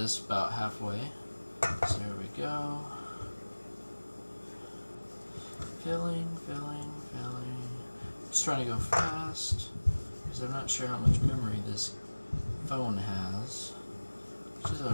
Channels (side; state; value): both; inverted; correlation -1.00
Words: about halfway. So here we go. Filling, filling, filling. Just trying to go fast because I'm not sure how much memory this phone has, which is